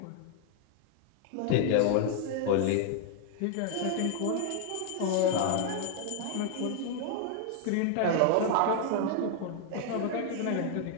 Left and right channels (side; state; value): both; different; correlation 0.00